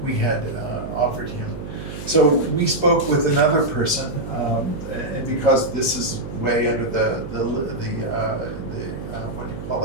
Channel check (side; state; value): right; noise; hum, 9 dB below the sound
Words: had offered him. So we spoke with another person, and because this is way under the what do you call